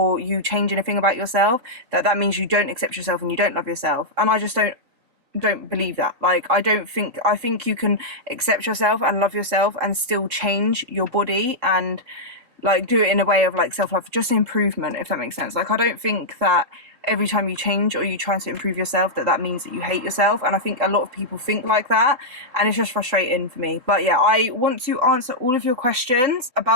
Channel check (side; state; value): left; late; 3.9 ms